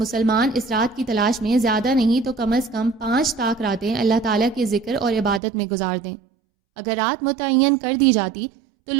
اس رات کی تلاش میں زیادہ نہیں تو کم از کم 5 طاق راتیں اللہ تعالیٰ کے ذکر اور عبادت میں گزار دیں۔ اگر رات متعین کر دی جاتی تو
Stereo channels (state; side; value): drops out; left; at 5.4 s